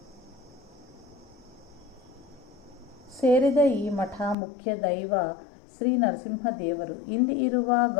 ಸೇರಿದ ಈ ಮಠ ಮುಖ್ಯ ದೈವ ಶ್ರೀ ನರಸಿಂಹದೇವರು. ಇಲ್ಲಿ ಇರುವ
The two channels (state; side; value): drops out; right; at 4.4 s